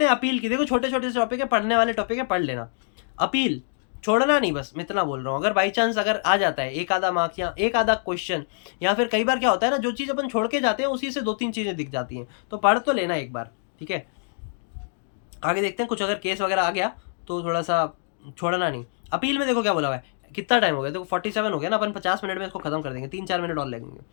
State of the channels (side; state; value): right; silent; digital silence